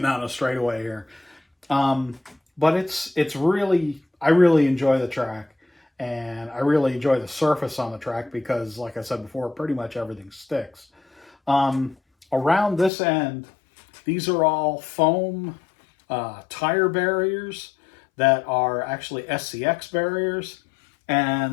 of straightaway here. But it's really, I really enjoy the track, and I really enjoy the surface on the track because, like I said before, pretty much everything sticks. Around this end, these are all foam tire barriers that are actually SCX barriers,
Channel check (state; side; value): drops out; right; at 12.9 s